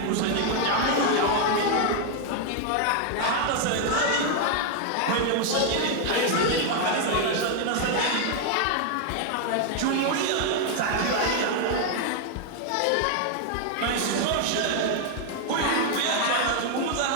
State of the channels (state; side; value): different; both; correlation 0.00